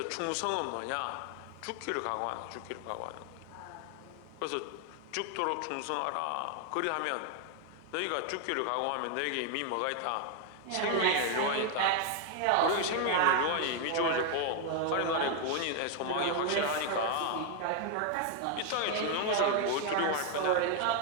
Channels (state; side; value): different; both; correlation 0.00